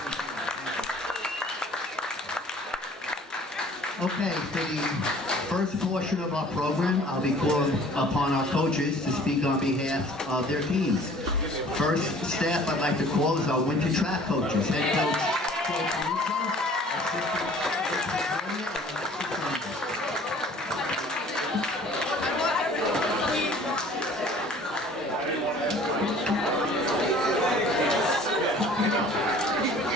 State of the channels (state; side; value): normal; both; correlation 0.51